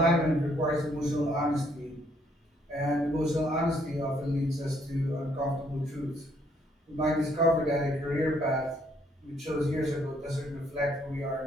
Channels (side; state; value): both; normal; correlation 0.68